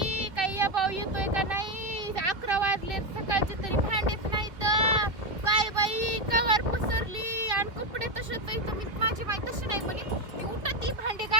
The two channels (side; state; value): left; late; 2.8 ms